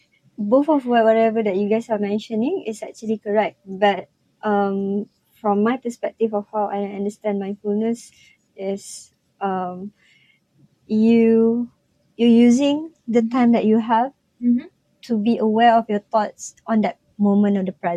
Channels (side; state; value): both; identical; correlation 1.00